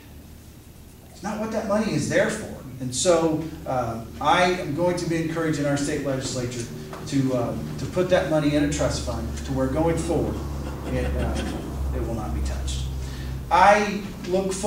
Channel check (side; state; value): both; identical; correlation 1.00